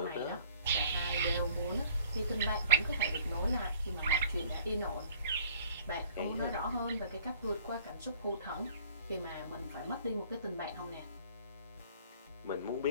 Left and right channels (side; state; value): both; inverted; correlation -0.55